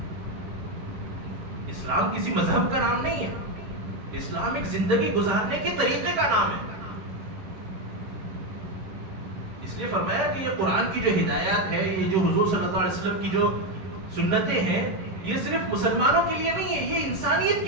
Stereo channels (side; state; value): left; late; 11 ms